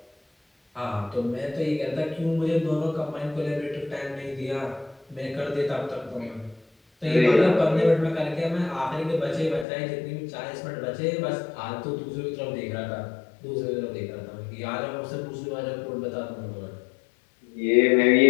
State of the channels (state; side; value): drops out; right; at 9.7 s